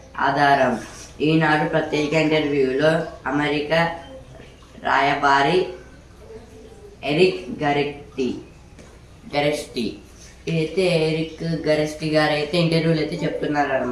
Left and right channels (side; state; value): both; identical; correlation 1.00